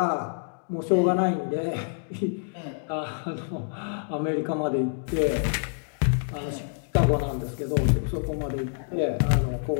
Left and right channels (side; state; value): right; silent; digital silence